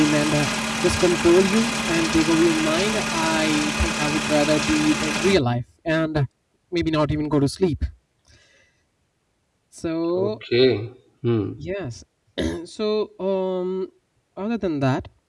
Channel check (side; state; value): both; identical; correlation 1.00